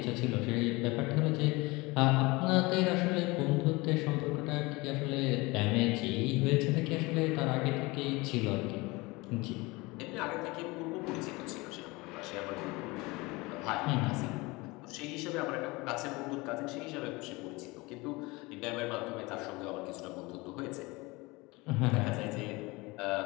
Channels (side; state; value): right; quieter; 23.6 dB